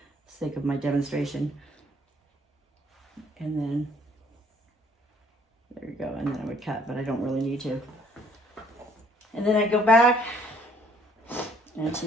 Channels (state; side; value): normal; both; correlation 0.61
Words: sake of my demonstration. And then there you go, and then I would cut, but I don't really need to. And then I go back, and she